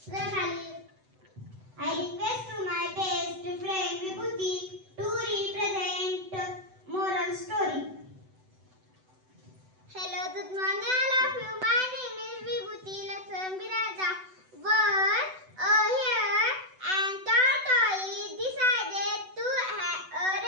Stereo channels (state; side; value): late; left; 7.9 ms